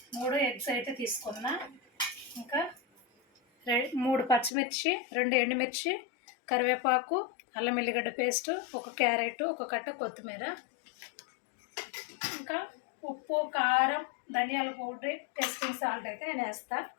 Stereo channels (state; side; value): drops out; right; at 4.5 s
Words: 3 ఎగ్స్ అయితే తీసుకున్నా. ఇంకా 3 పచ్చిమిర్చి, 2 ఎండుమిర్చి, కరివేపాకు, అల్లం ఎల్లిగడ్డ పేస్టు, 1 క్యారెట్, 1 కట్ట కొత్తిమీర, ఇంకా ఉప్పు, కారం, ధనియాల పౌడర్, టేస్టింగ్ సాల్ట్ అయితే నేను వేస్తా.